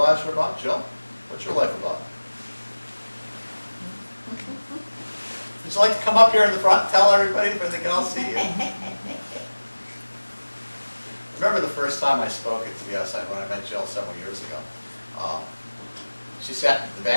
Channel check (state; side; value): inverted; both; correlation -1.00